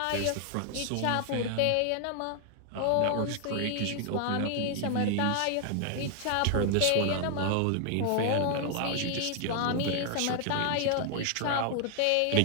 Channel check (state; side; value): different; both; correlation 0.00